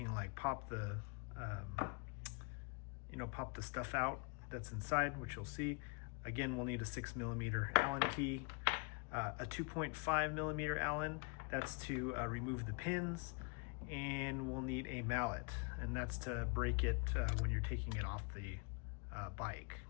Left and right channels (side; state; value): right; quieter; 34.6 dB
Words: like pop the pop the stuff out that's inside, which you'll see. Again, we'll need a 6mm Allen key, a 2.5mm Allen, that's to remove the pins, and we'll need a mallet, and that's to break it when you're taking it off the bike.